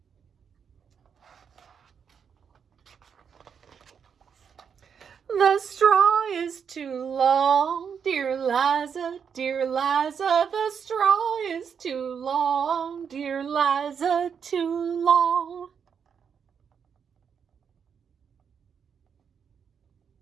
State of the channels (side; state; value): left; quieter; 7.0 dB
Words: The straw is too long, dear Liza, the straw is too long, dear Liza, too long.